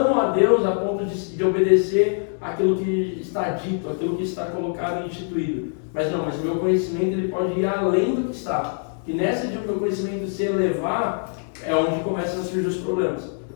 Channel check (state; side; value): silent; right; 61 dB below the other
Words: a Deus a ponto de obedecer aquilo que está dito, aquilo que está colocado e instituído. Mas o meu conhecimento ele pode ir além do que está. E nessa de o meu conhecimento se elevar, é onde começam a surgir os problemas.